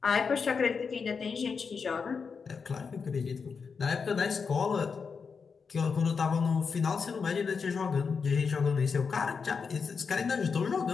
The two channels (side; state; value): right; quieter; 5.5 dB